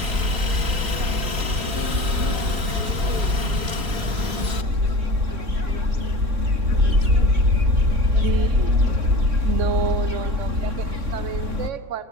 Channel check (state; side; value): late; left; 3.6 ms